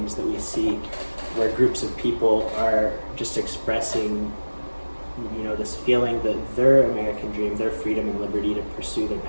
that we see where groups of people are just expressing this feeling that their American dream, their freedom and liberty to pursue their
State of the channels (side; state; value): both; inverted; correlation -1.00